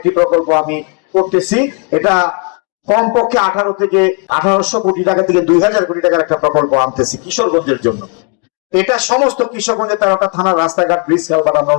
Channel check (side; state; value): right; quieter; 34.4 dB